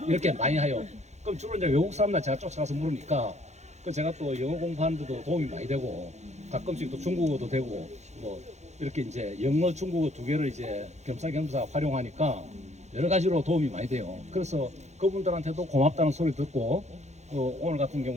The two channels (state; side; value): late; left; 0.33 ms